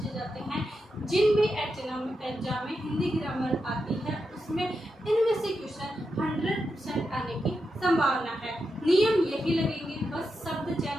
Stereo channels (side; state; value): both; normal; correlation 0.87